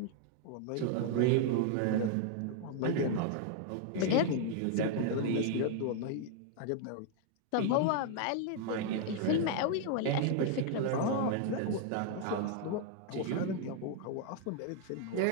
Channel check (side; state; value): both; different; correlation 0.00